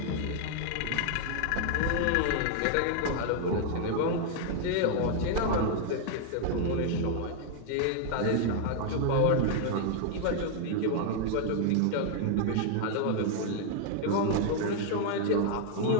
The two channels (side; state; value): both; different; correlation 0.00